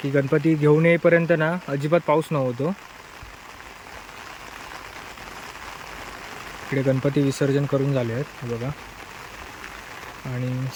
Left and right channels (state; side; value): identical; both; correlation 1.00